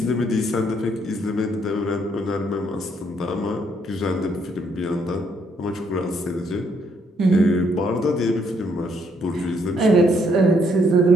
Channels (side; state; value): both; normal; correlation 0.71